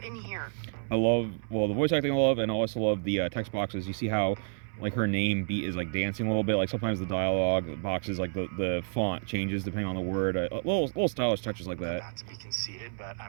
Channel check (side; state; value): left; silent; 58 dB below the other